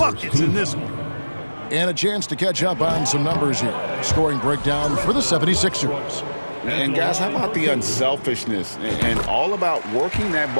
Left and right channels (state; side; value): inverted; both; correlation -1.00